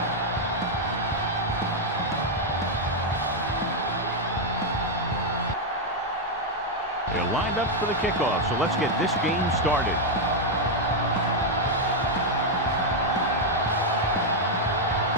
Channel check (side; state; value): both; normal; correlation 0.00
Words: They're lined up for the kickoff, so let's get this game started.